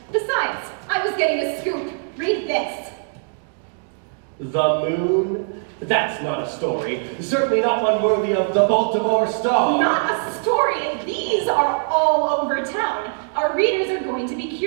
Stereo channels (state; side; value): silent; left; digital silence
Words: Besides, I was getting a scoop. Read this. The moon? That's not a story. Certainly not one worthy of the Baltimore Star. Not a story. These are all over town. Our readers are going to be